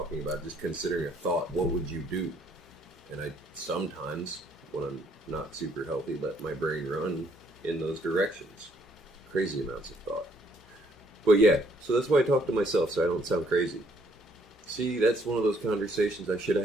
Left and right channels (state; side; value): normal; both; correlation 0.66